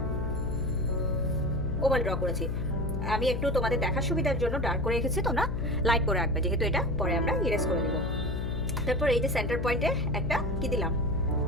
ওভাল ড্র করেছি। আমি একটু তোমাদের দেখার সুবিধার জন্য ডার্ক করে রেখেছি, তোমরা লাইট করে রাখবে, যেহেতু এটা পরে আমরা ইরেজ করে দেব। তারপর এই যে সেন্টার পয়েন্টে একটা কি দিলাম,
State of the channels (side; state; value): left; noise; hum, 2 dB below the sound